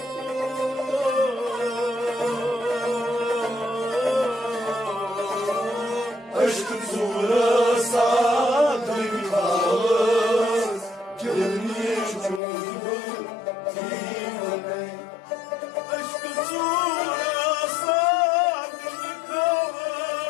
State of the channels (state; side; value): drops out; right; at 12.4 s